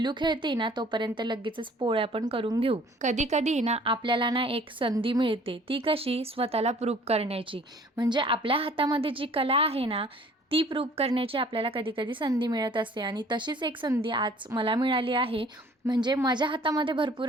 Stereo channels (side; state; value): both; normal; correlation 0.53